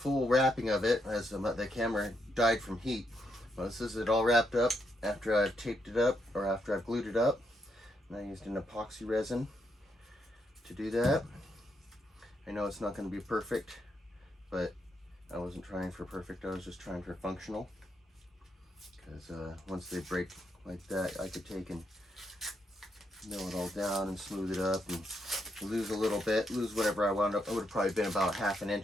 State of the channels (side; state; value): both; normal; correlation 0.79